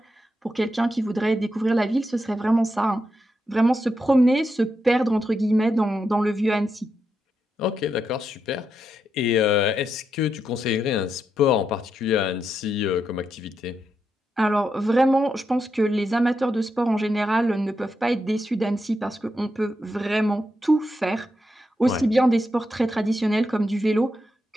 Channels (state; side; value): normal; both; correlation 0.84